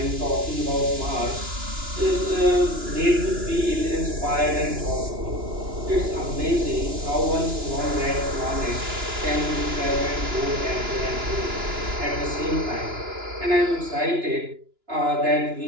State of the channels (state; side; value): late; left; 2.9 ms